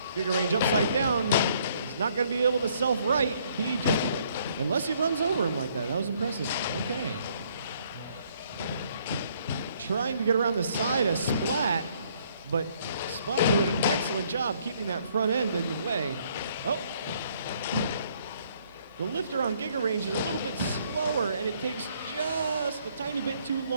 Giga Range upside down. He's not going to be able to self-right. He just, unless he runs over him like that. That was impressive. Okay. Trying to get around the side of Splat, but Splat doing an excellent job keeping that front end in the way. Oh. The lifter on Giga Range is a little bit slower, and it takes just a tiny bit too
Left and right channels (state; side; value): inverted; both; correlation -0.66